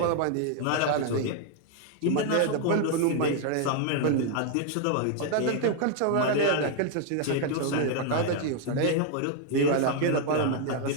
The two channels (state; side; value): different; both; correlation 0.00